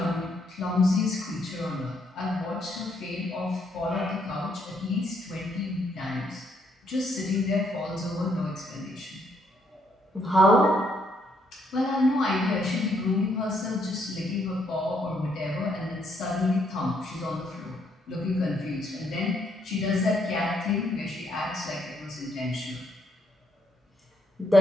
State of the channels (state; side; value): normal; both; correlation 0.73